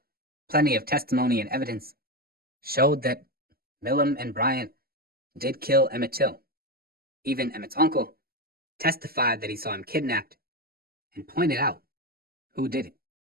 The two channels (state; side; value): late; left; 0.44 ms